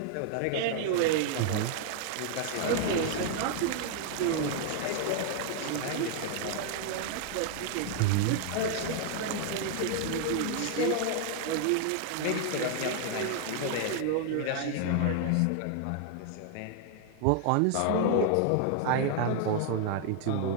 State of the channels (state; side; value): different; both; correlation 0.00